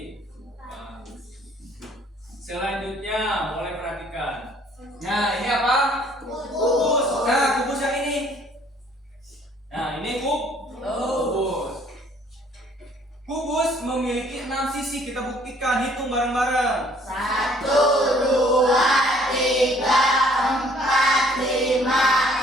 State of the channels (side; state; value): both; normal; correlation 0.59